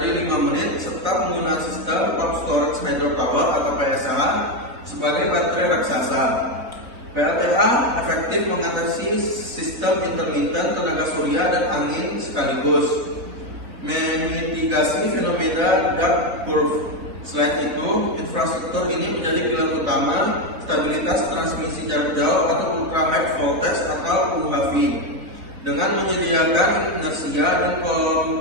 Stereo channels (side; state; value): left; late; 3.8 ms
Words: 5 menit, serta penggunaan sistem pump storage hydropower atau PSH sebagai baterai raksasa. PLTA efektif mengatasi sistem intermittent tenaga surya dan angin sekaligus, memitigasi fenomena dark curve. Selain itu, infrastruktur ini menjadi pilar utama stabilitas transmisi jarak jauh atau ultra high voltage atau UHV, dengan menyediakan inersia dan